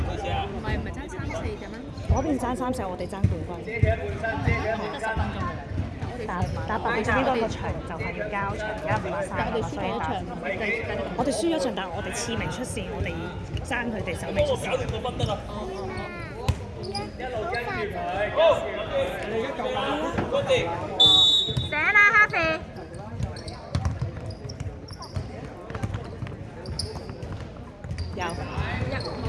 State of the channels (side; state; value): both; identical; correlation 1.00